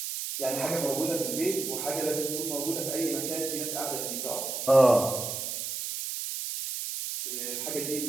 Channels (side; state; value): right; noise; hiss, 4 dB below the sound